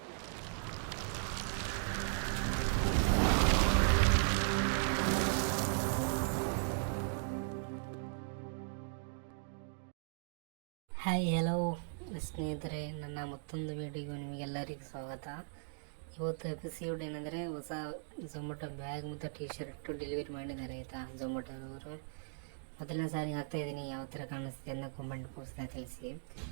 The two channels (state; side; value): silent; left; digital silence